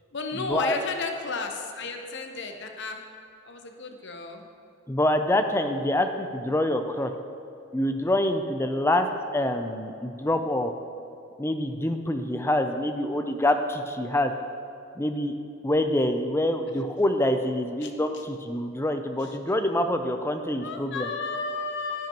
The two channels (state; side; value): normal; both; correlation 0.62